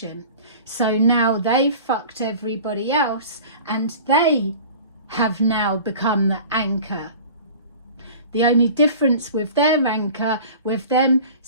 So now they've fucked everybody else, and they have now become the anchor. The only difference with their anchor, with them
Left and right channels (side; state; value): both; inverted; correlation -0.41